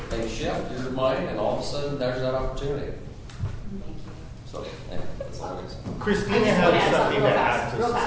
they shift your mind, and all of a sudden there's that opportunity. So, yeah, that's all I can say. Christina has something to add to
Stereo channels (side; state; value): both; identical; correlation 1.00